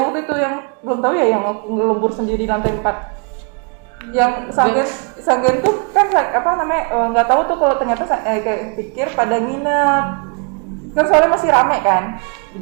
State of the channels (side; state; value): left; quieter; 36.7 dB